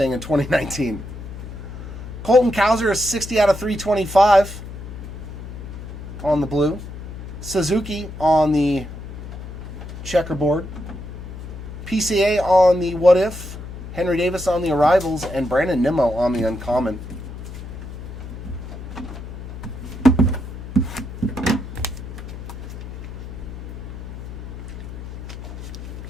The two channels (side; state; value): left; noise; hum, 10 dB below the sound